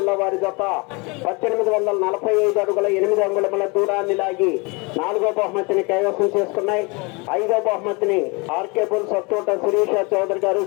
వారి జత 1845 అడుగుల 8 అంగుళముల దూరాన్ని లాగి నాలుగో బహుమతిని కైవసం చేసుకున్నాయి. ఐదో బహుమతిని ఆర్కేపుల్, సత్తోట శిరీష చౌదరి గారు,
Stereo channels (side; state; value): right; quieter; 28.5 dB